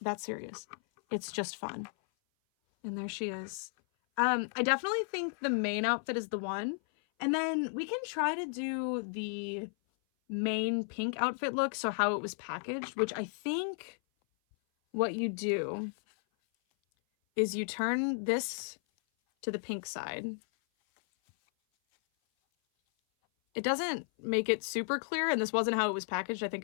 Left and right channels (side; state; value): right; silent; 55 dB below the other